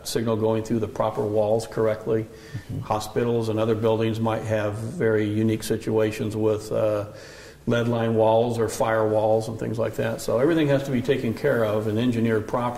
signal going through the proper walls correctly. Mm-hmm. Hospitals and other buildings might have very unique situations with lead line walls or fire walls and things like that. So everything has to be taken care of and engineered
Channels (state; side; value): identical; both; correlation 1.00